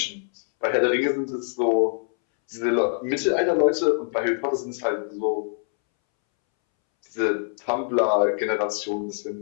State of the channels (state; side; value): silent; right; 62 dB below the other